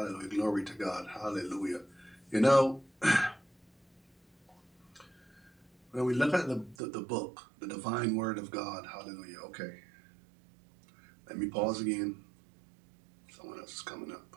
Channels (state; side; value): drops out; left; at 6.8 s